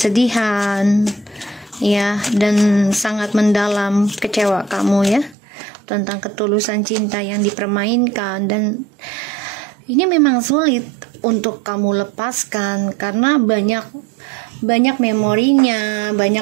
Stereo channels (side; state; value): left; drops out; at 5.4 s